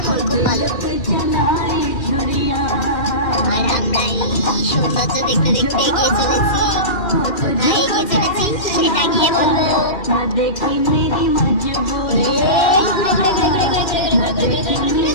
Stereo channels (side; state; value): right; late; 2.5 ms